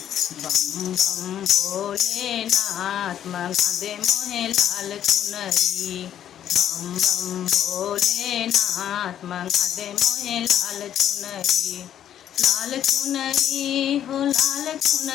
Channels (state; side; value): quieter; right; 10.5 dB